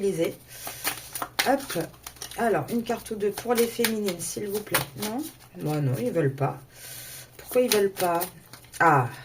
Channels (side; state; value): both; identical; correlation 1.00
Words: Hop. Alors, une carte ou deux pour les féminines, s'il vous plaît. Non, moi non, ils ne veulent pas. Pourquoi ils ne veulent pas? Ah,